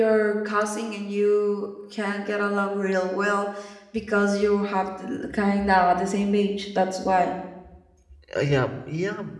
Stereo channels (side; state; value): both; identical; correlation 1.00